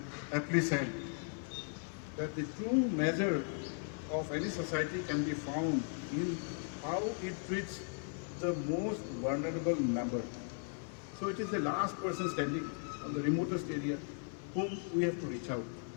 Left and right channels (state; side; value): silent; right; 53 dB below the other